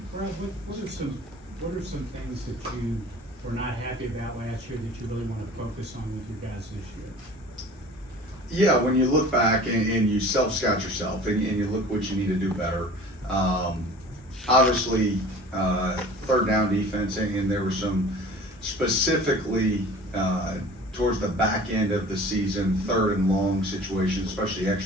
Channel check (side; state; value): both; normal; correlation 0.43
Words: Brad, what are some things that you were not happy about last year that you really want to focus on with your guys this year? Yeah, when you look back and you self-scout yourself and you look what you need to do better, obviously third down defense, and there were some specifically towards the back end of the season, third and long situations, especially